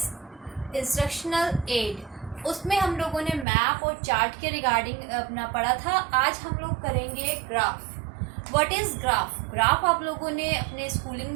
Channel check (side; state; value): left; drops out; at 3.5 s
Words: instructional aid. उसमें हम लोगों ने map और chart के regarding अपना पढ़ा था. आज हम लोग करेंगे graph. What is graph? Graph आप लोगों ने अपने स्कूलिंग